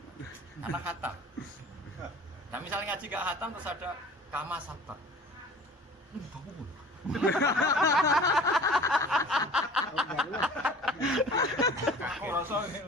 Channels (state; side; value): normal; both; correlation 0.44